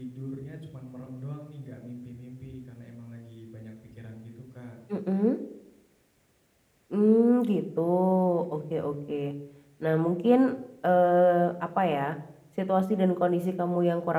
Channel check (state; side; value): identical; both; correlation 1.00